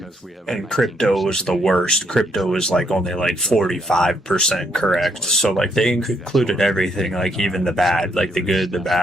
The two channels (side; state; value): both; normal; correlation 0.73